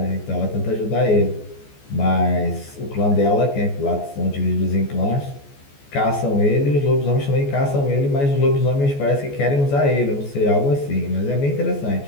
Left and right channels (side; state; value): right; late; 14 ms